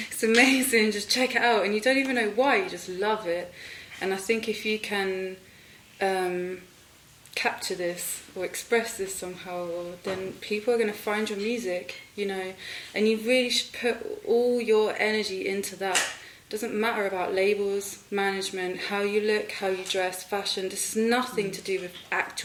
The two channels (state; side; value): identical; both; correlation 1.00